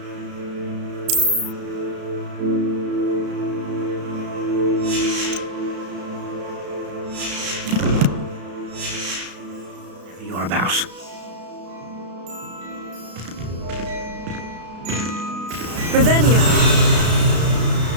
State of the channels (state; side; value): late; left; 33 ms